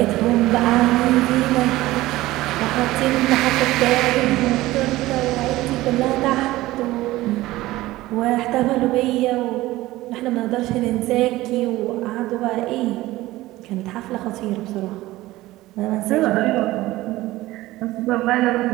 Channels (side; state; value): left; quieter; 17.5 dB